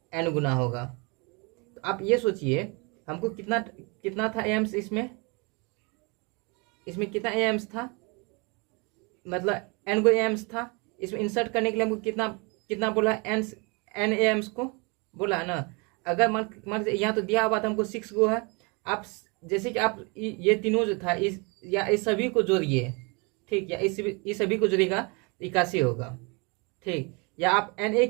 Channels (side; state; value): left; quieter; 30.6 dB